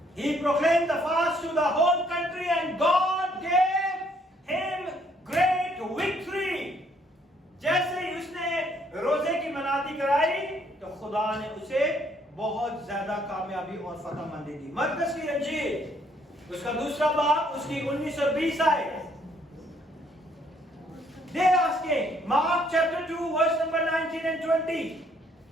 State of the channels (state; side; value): normal; both; correlation 0.67